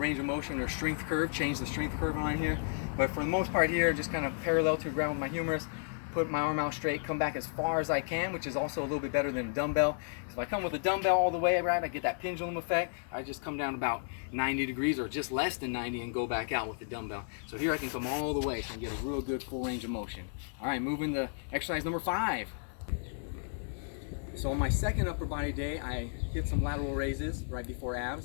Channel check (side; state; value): right; silent; 56 dB below the other